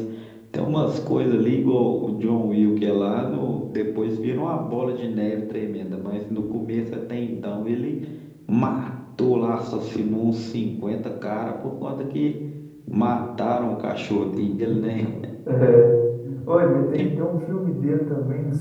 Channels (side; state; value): both; identical; correlation 1.00